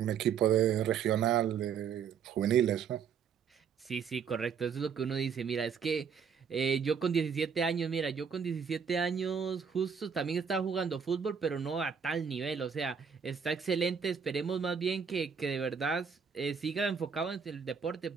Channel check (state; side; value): quieter; left; 6.7 dB